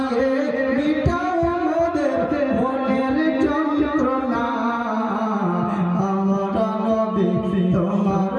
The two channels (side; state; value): both; identical; correlation 1.00